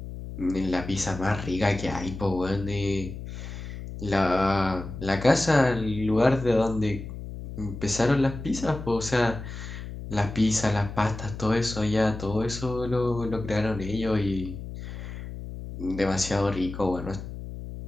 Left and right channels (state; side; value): noise; left; hum, 9 dB below the sound